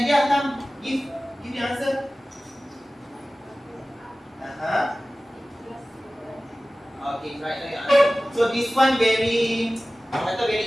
come give the answer. Okay, right now your answer. So this one very, kata very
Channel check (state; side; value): normal; both; correlation 0.97